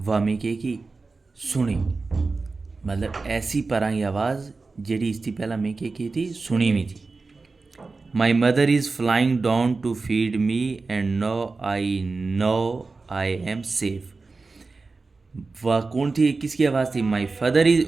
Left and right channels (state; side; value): quieter; left; 3.9 dB